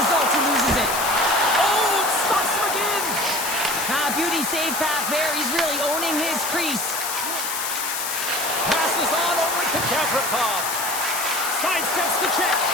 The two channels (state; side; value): noise; left; hiss, 3 dB below the sound